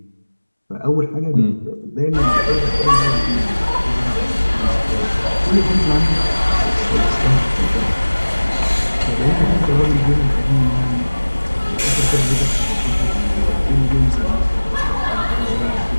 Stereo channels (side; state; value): both; inverted; correlation -1.00